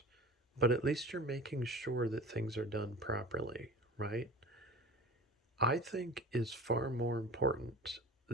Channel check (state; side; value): normal; both; correlation 0.38